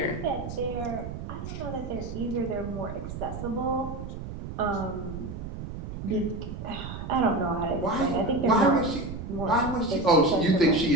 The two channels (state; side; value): noise; right; rumble, 8 dB below the sound